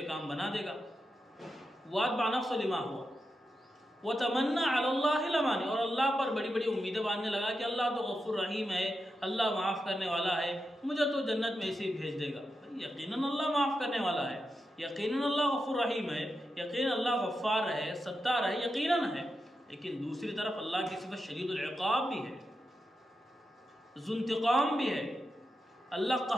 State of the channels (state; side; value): normal; both; correlation 0.88